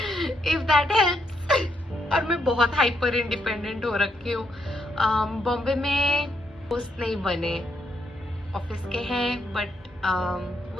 इफ दैट हेल्प्स। और मैं बहुत हाइपर इंडिपेंडेंट हो रखी हूँ। बॉम्बे में दोस्त नहीं बने, ऑफिस के हैं बट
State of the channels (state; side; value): normal; both; correlation 0.77